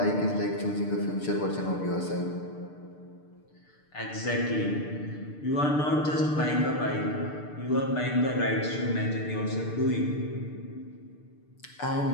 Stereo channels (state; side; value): late; right; 6.7 ms